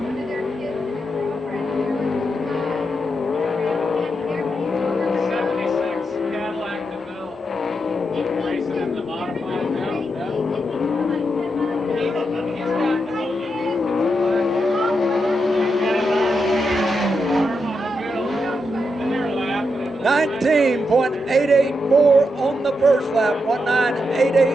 $19.884 on the first lap,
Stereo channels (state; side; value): normal; both; correlation 0.84